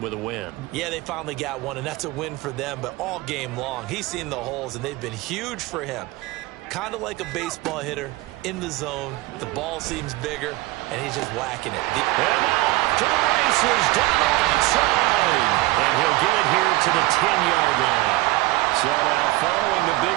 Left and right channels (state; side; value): quieter; left; 20.0 dB